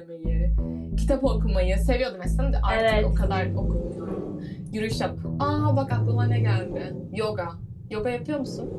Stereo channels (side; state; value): both; identical; correlation 1.00